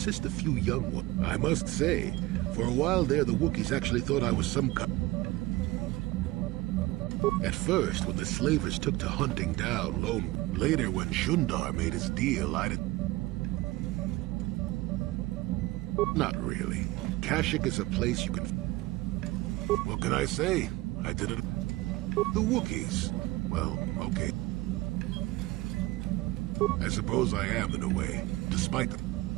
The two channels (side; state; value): left; quieter; 19.0 dB